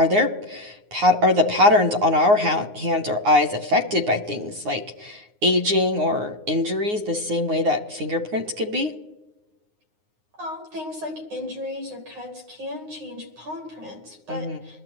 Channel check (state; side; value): late; left; 9.6 ms